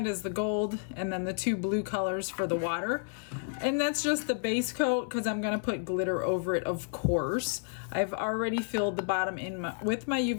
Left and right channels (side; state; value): right; silent; 56 dB below the other